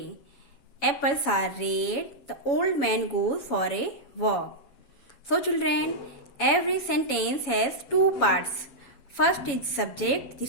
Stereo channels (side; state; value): right; late; 7.1 ms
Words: Apples are red. The old man goes for a walk. So children, every sentence has two parts. First is subject